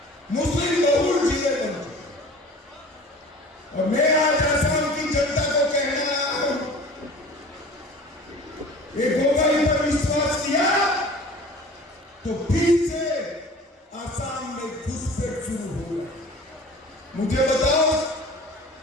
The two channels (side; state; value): both; normal; correlation 0.42